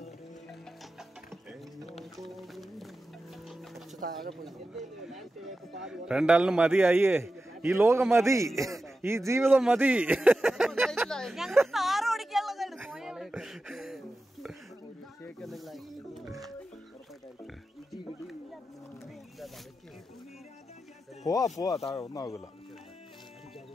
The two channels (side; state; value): both; normal; correlation 0.92